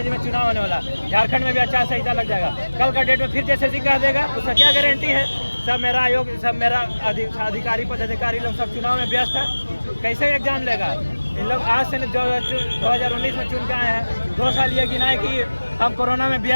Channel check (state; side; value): inverted; both; correlation -1.00